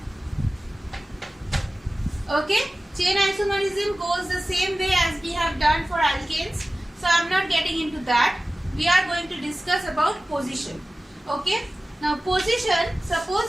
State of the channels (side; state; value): both; normal; correlation 0.96